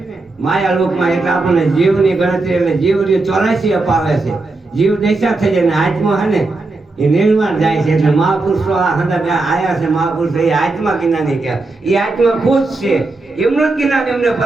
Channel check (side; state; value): left; quieter; 3.3 dB